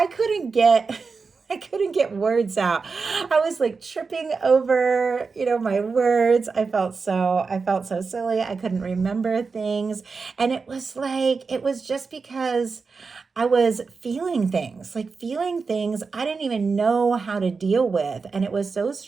couldn't get words out. I was tripping over, my words. I felt so silly. I couldn't remember things. And it was just because I was feeling things I didn't even know how to deal with. And it was so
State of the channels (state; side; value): quieter; left; 4.7 dB